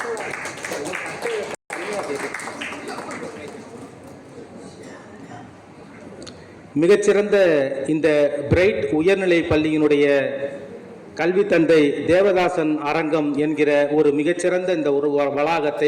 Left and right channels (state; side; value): identical; both; correlation 1.00